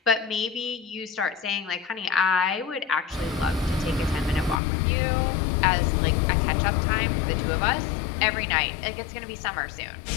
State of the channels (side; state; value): right; drops out; at 4.6 s